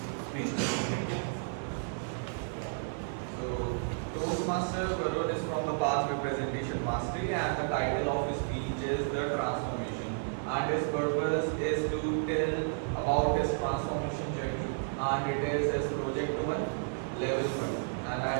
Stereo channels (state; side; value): silent; left; digital silence